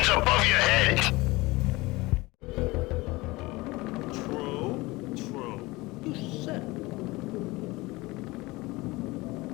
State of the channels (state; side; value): quieter; right; 21.7 dB